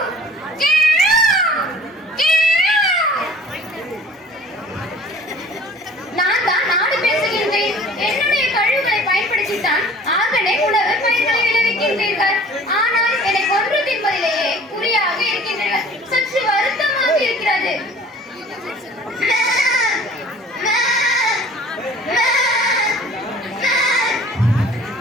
நான் தான் நாடு பேசுகின்றேன். என்னுடைய கழிவுகளை பயன்படுத்தித்தான் ஆகவே உணவு பயிர்களை விளைவிக்கின்றீர்கள். ஆனால் என்னை கொன்று தின்பதிலேயே குறியாக இருக்கின்றனர். சற்று வருத்தமாக இருக்கிறது.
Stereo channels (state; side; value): normal; both; correlation 0.48